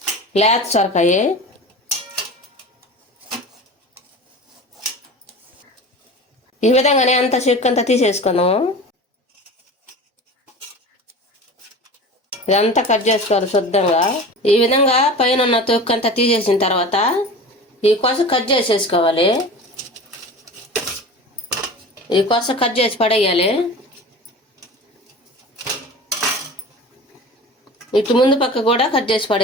లేత సొరకాయ ఈ విధంగానే అంత చెక్కు అంతా తీసేసుకున్నాము. ఇదంతా కట్ చేసుకోవాలి శుద్ధంగా. ఈ విధంగా పైన ఉన్న తొక్కు అంతా తీసేసిన తర్వాత ఈ కొస కట్ చేసేసుకోవాలి. ఈ కొస కట్ చేసి పడేయాలి. ఇటు ముందు పక్క కూడా కట్ చేసి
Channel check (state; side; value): normal; both; correlation 0.35